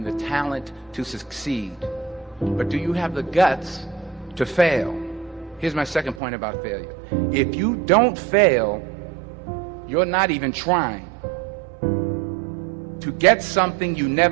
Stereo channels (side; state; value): left; drops out; at 6.2 s